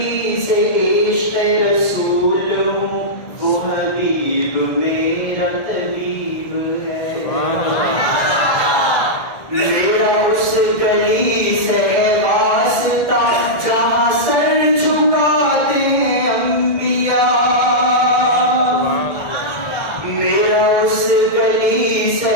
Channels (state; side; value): late; right; 1.7 ms